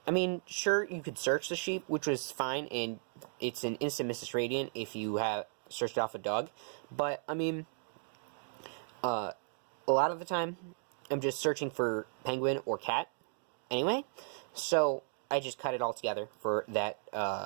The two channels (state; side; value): silent; left; digital silence